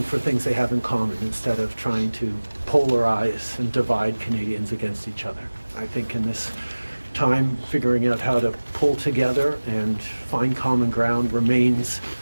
for things they have in common instead of trying to polarize and divide Canadians against each other. I think in this time, figuring out how to pull together and find common ground remains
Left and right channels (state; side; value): inverted; both; correlation -1.00